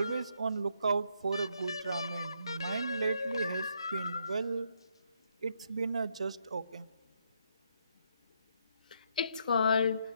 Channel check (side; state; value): both; inverted; correlation -0.75